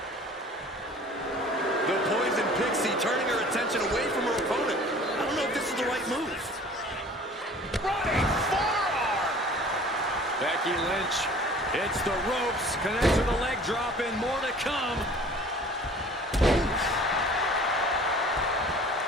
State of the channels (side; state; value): both; normal; correlation 0.47